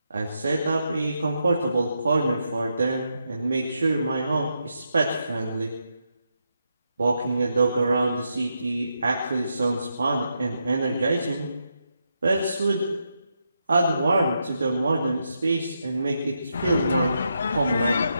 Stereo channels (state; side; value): inverted; both; correlation -0.83